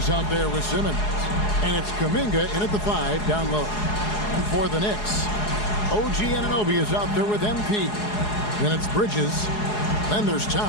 out there with Simmons. And it's Kuminga in at the 5 down low. And for the Knicks, OG Anunoby is out there with MP. Then it's Bridges. Then there's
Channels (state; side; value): late; right; 4.8 ms